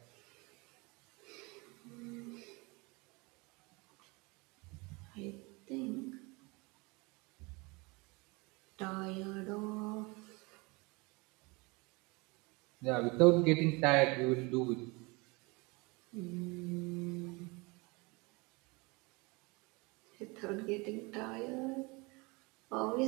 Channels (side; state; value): left; quieter; 26.7 dB